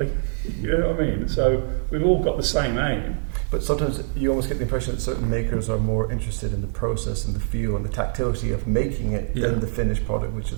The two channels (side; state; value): left; silent; 63 dB below the other